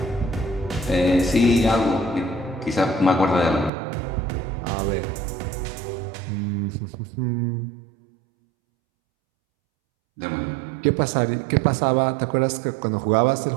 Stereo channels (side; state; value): left; drops out; at 3.7 s